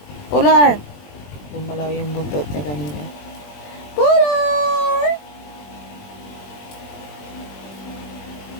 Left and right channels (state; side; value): late; right; 21 ms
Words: Polar! Gumalaw yung buntot niya kanina. Polar!